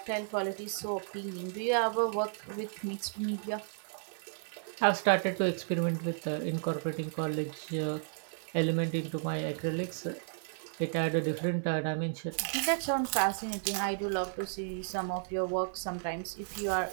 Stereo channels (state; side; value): silent; left; digital silence